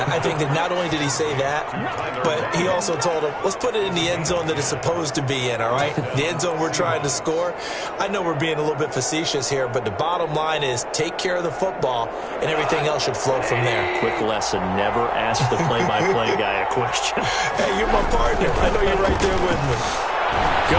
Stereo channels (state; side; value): identical; both; correlation 1.00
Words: I think that not only did he say that, but he also told him, let's put it in the end zone that it's supposed to be in, all right? The end zone we're trying to score. I know we're being a little bit facetious here, but the bottom line is take care of the football, and everything else should flow from there. Quick lesson, never ask the play-by-play guy a question. Hey, you're my partner. I know you're right there with me.